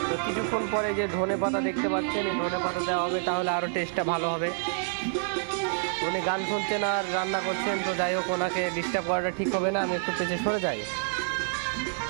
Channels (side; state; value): left; silent; digital silence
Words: তো কিছুক্ষণ পরে যে ধনে পাতা দেখতে পাচ্ছেন, এই ধনে পাতা দেওয়া হবে, তাহলে আরও টেস্টটা ভালো হবে। উনি গান শুনছেন আর রান্না করছেন, তো যাই হোক ওনাকে ডিস্টার্ব করাটা ঠিক হবে না, আমি একটু পেছনে সরে যাই।